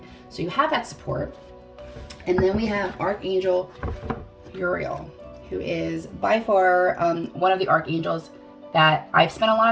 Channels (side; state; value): both; identical; correlation 1.00